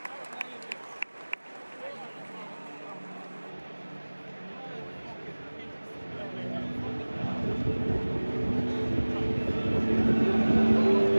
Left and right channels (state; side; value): inverted; both; correlation -1.00